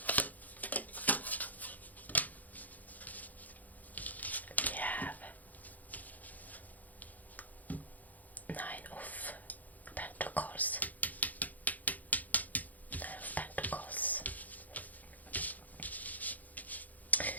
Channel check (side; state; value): right; late; 0.080 ms